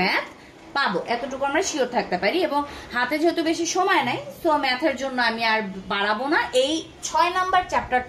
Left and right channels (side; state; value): both; identical; correlation 1.00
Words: পাবো, এতটুকু আমরা শিওর থাকতে পারি। এবং হাতে যেহেতু বেশি সময় নাই, সো ম্যাথের জন্য আমি আর বাড়াবো না, এই 6 নাম্বার